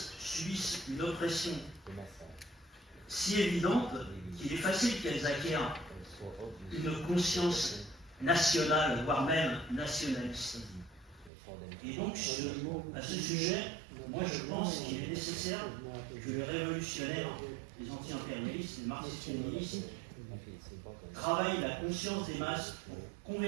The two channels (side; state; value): left; drops out; at 11.3 s